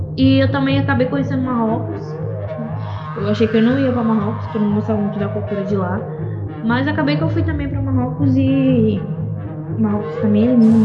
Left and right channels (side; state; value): both; identical; correlation 1.00